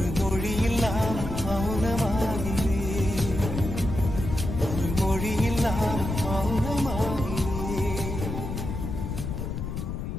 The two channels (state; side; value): noise; left; rumble, 5 dB below the sound